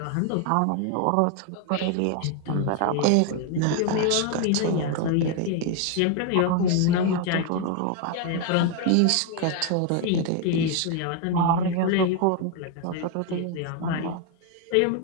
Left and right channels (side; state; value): both; different; correlation 0.01